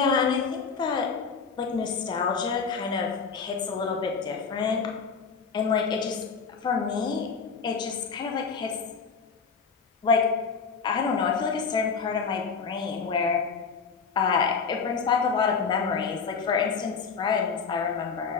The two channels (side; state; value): right; quieter; 5.5 dB